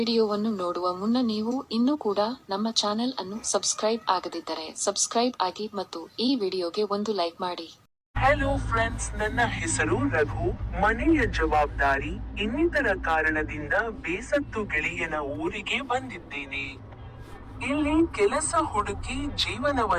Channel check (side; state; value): both; identical; correlation 1.00